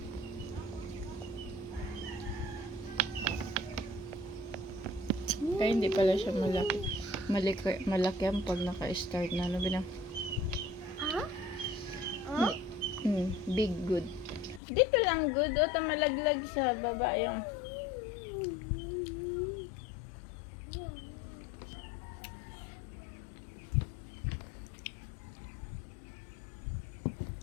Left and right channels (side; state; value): right; drops out; at 14.6 s